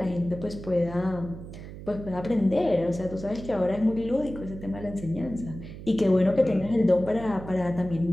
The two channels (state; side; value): noise; right; hum, 12 dB below the sound